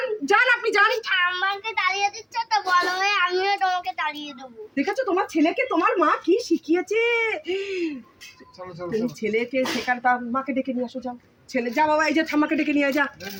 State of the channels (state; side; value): identical; both; correlation 1.00